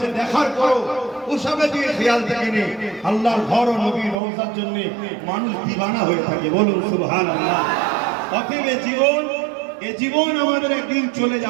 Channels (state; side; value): drops out; left; at 4.2 s